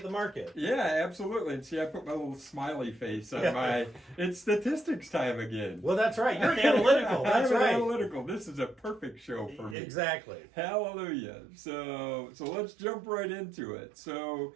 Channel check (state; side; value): drops out; left; at 9.8 s